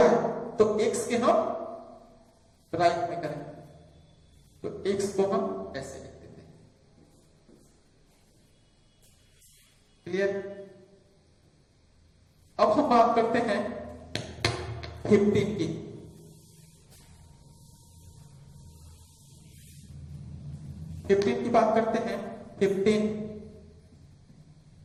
है तो x के हम राइट में करें, तो x को हम ऐसे लिख देते हैं। क्लियर? अब हम बात करते हैं 15 की। 15 की बात करते हैं। 15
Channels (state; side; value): identical; both; correlation 1.00